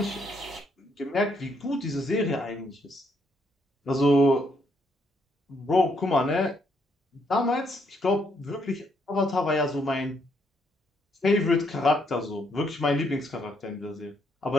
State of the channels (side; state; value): both; normal; correlation 0.73